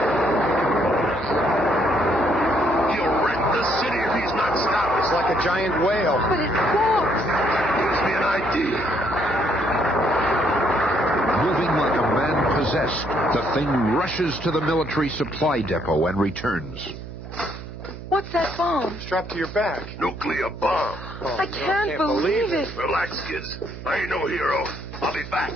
He'll wreck the city if he's not stopped. It's like a giant whale. But it walks. Gives me an idea. Moving like a man possessed, the thing rushes to the military supply depot and returns. What's that bomb? Strapped to your back. Nuclear bomb. Oh, I can't believe it. Relax, kids. I ain't no hero. I'll be back.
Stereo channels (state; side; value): noise; right; hum, 12 dB below the sound